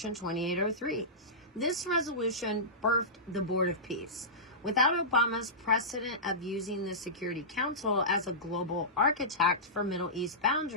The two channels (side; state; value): both; normal; correlation -0.18